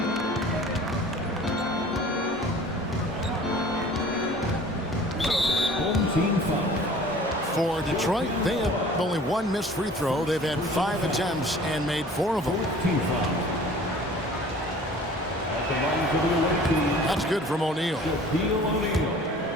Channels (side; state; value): both; normal; correlation 0.47